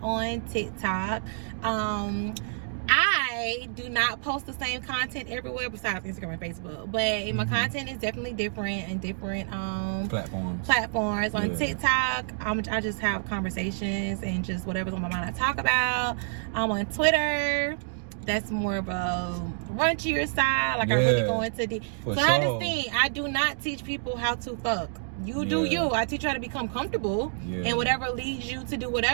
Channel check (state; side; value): silent; left; digital silence